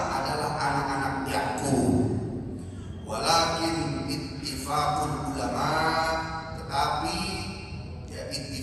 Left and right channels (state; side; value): identical; both; correlation 1.00